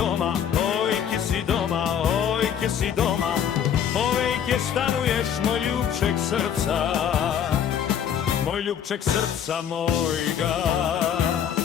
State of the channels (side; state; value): right; quieter; 8.7 dB